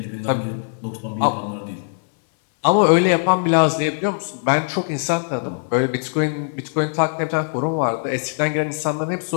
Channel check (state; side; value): silent; right; 62 dB below the other